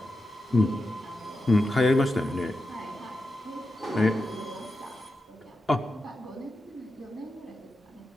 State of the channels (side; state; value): both; normal; correlation 0.89